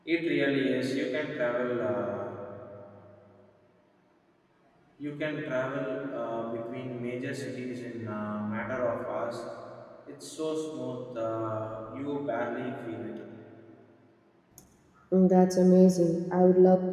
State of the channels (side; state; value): both; identical; correlation 1.00